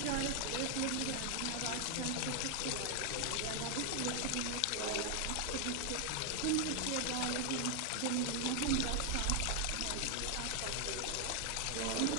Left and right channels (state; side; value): different; both; correlation 0.00